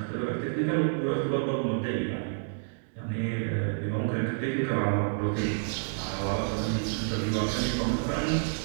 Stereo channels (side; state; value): left; silent; digital silence